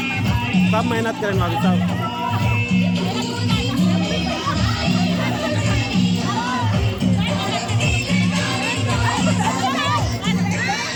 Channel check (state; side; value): identical; both; correlation 1.00